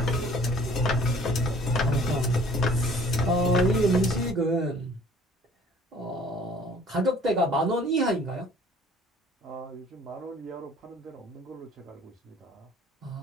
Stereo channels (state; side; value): normal; both; correlation 0.53